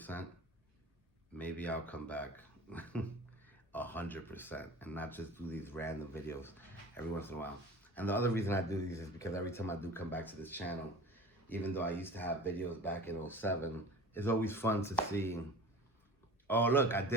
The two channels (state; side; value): normal; both; correlation 0.38